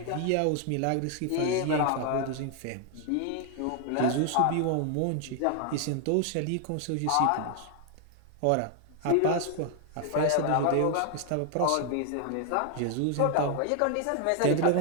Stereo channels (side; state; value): both; different; correlation 0.00